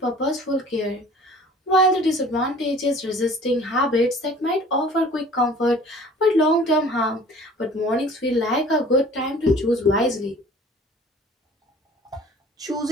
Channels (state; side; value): normal; both; correlation 0.48